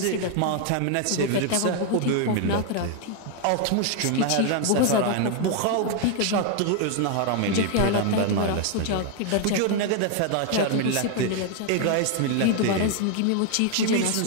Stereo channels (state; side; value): different; both; correlation 0.00